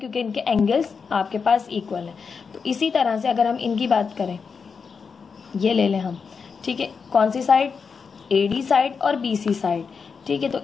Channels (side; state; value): right; quieter; 5.6 dB